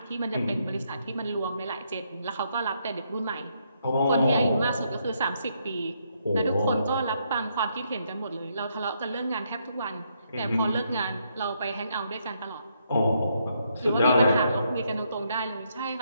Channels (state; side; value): inverted; both; correlation -0.75